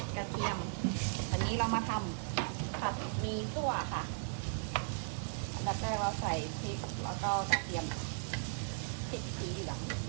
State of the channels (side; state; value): left; silent; 53 dB below the other